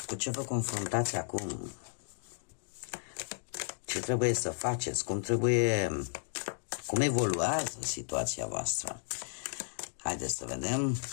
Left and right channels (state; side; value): silent; right; digital silence